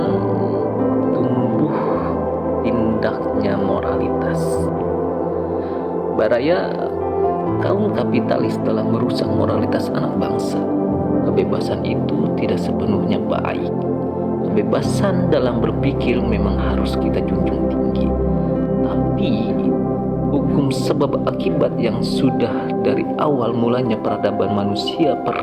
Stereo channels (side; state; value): both; identical; correlation 1.00